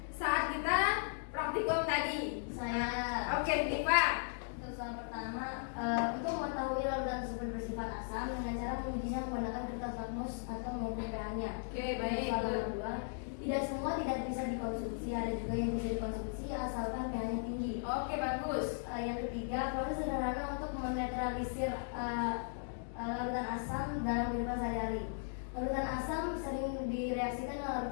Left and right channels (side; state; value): right; silent; digital silence